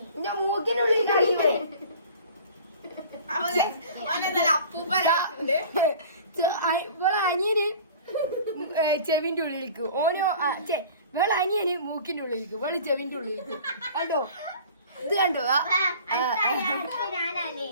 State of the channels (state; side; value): inverted; both; correlation -0.44